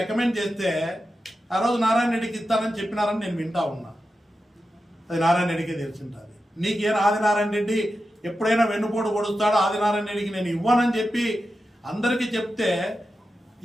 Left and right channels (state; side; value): normal; both; correlation 0.90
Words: చేస్తే ఆ రోజు నారాయణ రెడ్డికి ఇస్తానని చెప్పినారని నేను వింటా ఉన్నా. అది నారాయణ రెడ్డికే తెలిసింటుంది. నీకేం ఆదినారాయణ రెడ్డి ఎప్పుడైనా వెన్నుపోటు పొడుస్తాడో ఆదినారాయణ రెడ్డికి నేను ఇవ్వనని చెప్పి అందరికీ చెప్తే